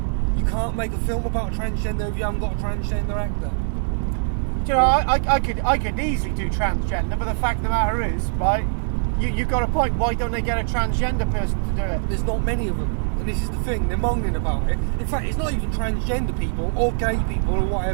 You can't make a film about a transgender if you haven't got a transgender actor. Do you know, I could easily do transgender, but the fact of the matter is, right? You've got a point. Why don't they get a transgender person to do it? There's not many of them. And this is the thing, they're moaning about it. In fact, it's not even transgender people or gay people or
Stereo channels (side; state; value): left; silent; 64 dB below the other